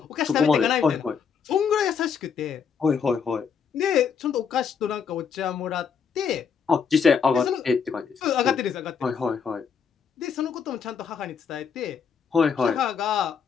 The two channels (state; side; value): quieter; right; 6.5 dB